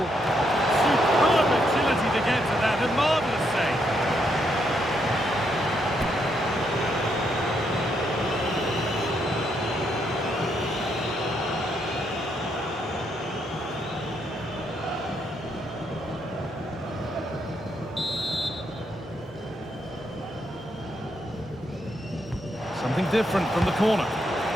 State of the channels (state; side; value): normal; both; correlation 0.77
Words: Superb get to that. A marvellous save. Something different from the corner.